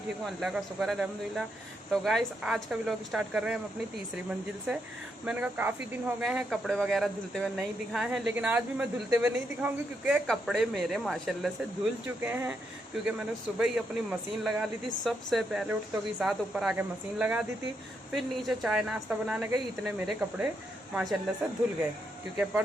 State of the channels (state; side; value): normal; both; correlation 0.80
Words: हूँ, अल्लाह का शुक्र है, अल्हम्दुलिल्लाह। तो गाइस आज का व्लॉग स्टार्ट कर रहे हैं हम अपनी तीसरी मंजिल से। मैंने कहा काफ़ी दिन हो गए हैं कपड़े वगैरह धुलते हुए नहीं दिखाए हैं, लेकिन आज भी मैं धुलते हुए नहीं दिखाऊंगी क्योंकि कपड़े मेरे माशाल्लाह से धुल चुके हैं। क्योंकि मैंने सुबह ही अपनी मशीन लगा ली थी, सबसे पहले उठते के साथ ऊपर आके मशीन लगा दी थी, फिर नीचे चाय नाश्ता बनाने गई, इतने मेरे कपड़े माशाल्लाह से धुल गए। क्योंकि